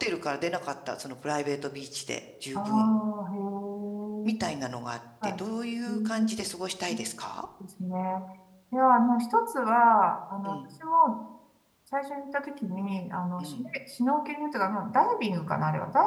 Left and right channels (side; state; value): both; identical; correlation 1.00